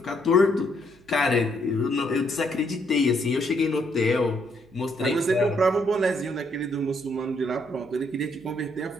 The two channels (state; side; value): noise; right; hum, 29 dB below the sound